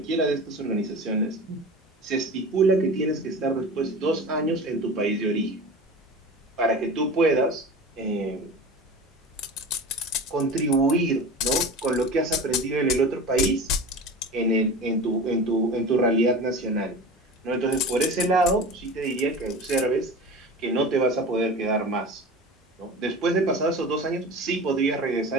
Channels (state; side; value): normal; both; correlation 0.34